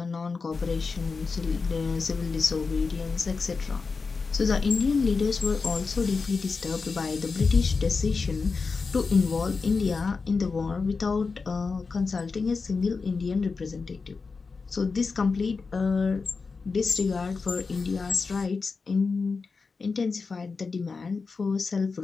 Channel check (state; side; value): quieter; right; 4.6 dB